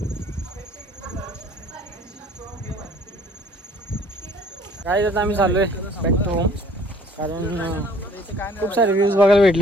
काय आता आम्ही चाललोय बॅक टू होम. कारण खूप सारे व्ह्यूज बघायला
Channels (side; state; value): both; normal; correlation 0.55